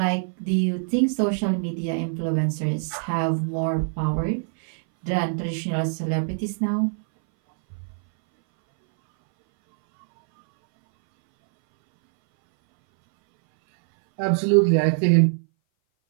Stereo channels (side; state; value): left; silent; 60 dB below the other